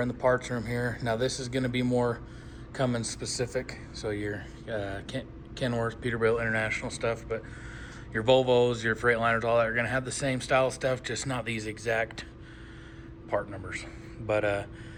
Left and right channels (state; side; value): identical; both; correlation 1.00